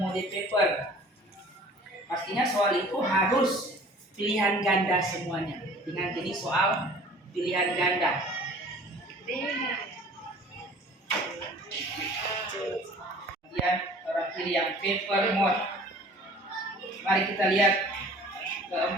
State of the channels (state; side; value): normal; both; correlation 0.48